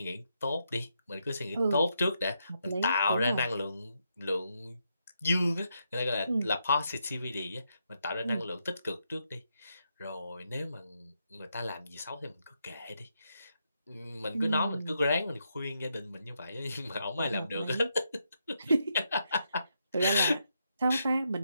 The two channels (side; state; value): both; inverted; correlation -0.81